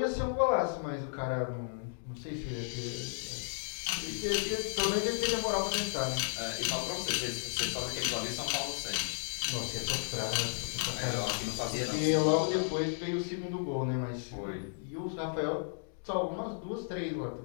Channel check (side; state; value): right; silent; digital silence